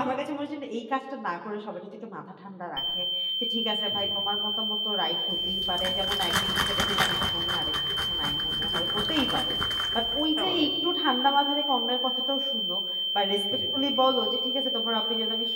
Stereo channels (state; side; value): identical; both; correlation 1.00